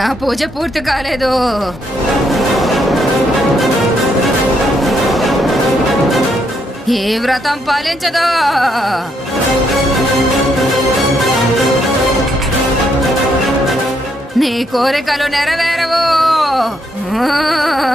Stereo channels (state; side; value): normal; both; correlation 0.75